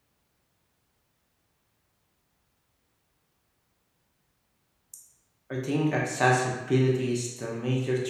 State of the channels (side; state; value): both; identical; correlation 1.00